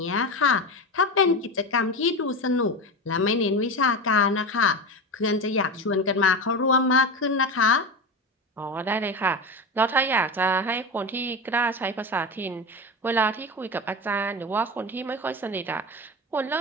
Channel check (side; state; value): both; normal; correlation 0.23